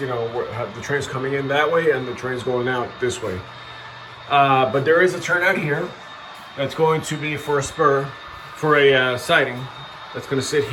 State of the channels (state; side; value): identical; both; correlation 1.00